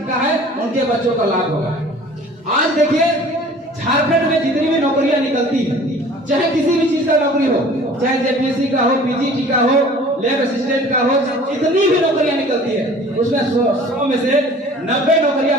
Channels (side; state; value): both; normal; correlation 0.47